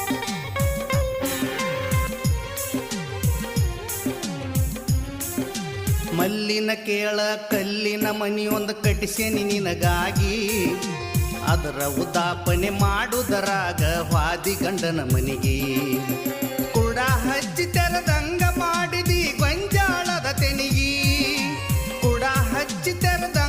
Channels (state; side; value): identical; both; correlation 1.00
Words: ಮಲ್ಲಿನ ಕೇಳ ಕಲ್ಲಿನ ಮನಿಯೊಂದು ಕಟ್ಟಿಸೇನಿ ನಿನಗಾಗಿ ಅದರ ಉದಾಪನೆ ಮಾಡುವುದರಾಗ ವಾದಿ ಗಂಡನ ಮನಿಗೆ ಕೂಡ ಹಚ್ಚಿ ತೆರದಂಗ ಮಾಡಿದಿ